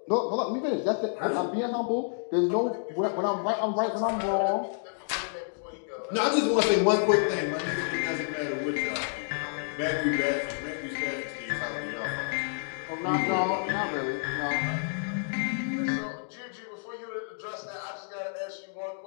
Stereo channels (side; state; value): right; silent; digital silence